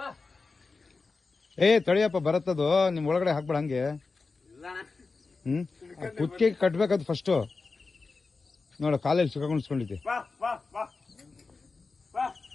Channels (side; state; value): right; quieter; 4.1 dB